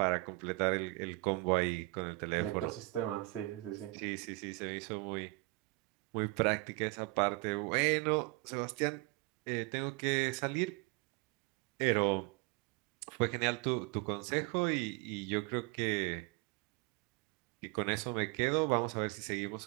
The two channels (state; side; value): quieter; left; 23.7 dB